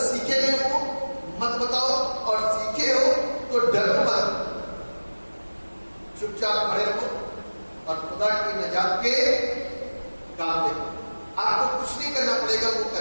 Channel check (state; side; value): inverted; both; correlation -1.00